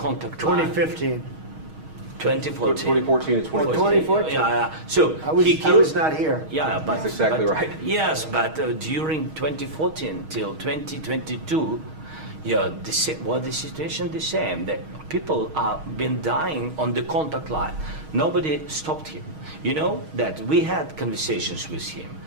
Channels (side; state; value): left; late; 6.4 ms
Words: line? 2015. 2014. 2014 and 2015. 2014. Yeah. So I was not here. Yeah, but that's exactly right. Yes, but during 2014 till 2022, yeah, the situation the same. The people are been dying on the contact line. Nobody stopped him. You know that we had conversations with him,